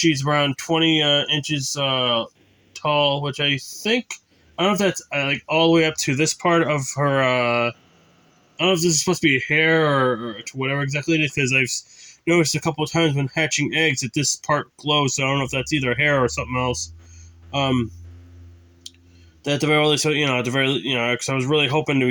around 20 inches tall, which I think, I don't know if that's like all the way up to this part of her. I don't know if this is supposed to be hair or to whatever exactly it is, because I've noticed a couple of times when hatching eggs that this part glows. So I don't know if that's either hair or something else. At the very least, at the very, because I was really hoping to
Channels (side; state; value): both; identical; correlation 1.00